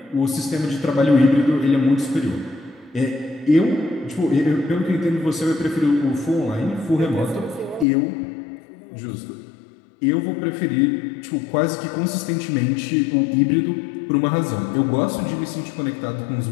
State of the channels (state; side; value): drops out; right; at 7.9 s